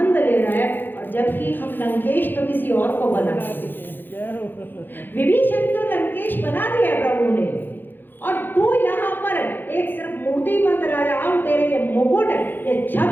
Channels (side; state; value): right; late; 0.094 ms